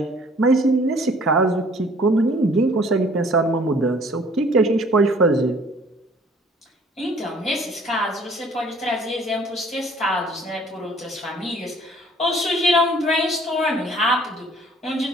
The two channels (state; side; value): normal; both; correlation 0.55